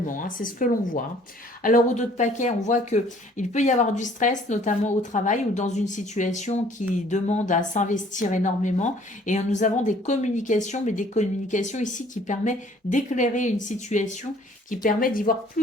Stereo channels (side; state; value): both; normal; correlation 0.56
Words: hein, c'est ce que l'on voit. Hein. Alors au dos de paquet, on voit que il peut y avoir du stress, notamment au travail ou dans une situation qui demande à s'investir énormément. Et nous avons des communications, mais des communications ici qui permettent d'éclairer une situation, qui permet d'y voir